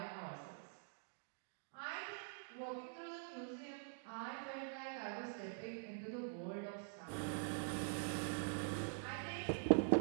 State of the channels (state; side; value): silent; left; digital silence